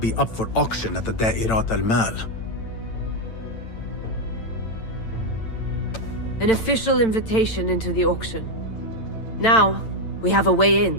up for auction at the Da'irat al-Mal. An official invitation into the auction. Now, we have a way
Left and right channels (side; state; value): right; late; 8.9 ms